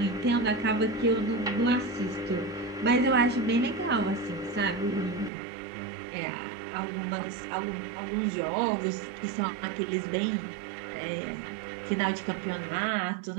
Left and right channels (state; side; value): drops out; left; at 5.3 s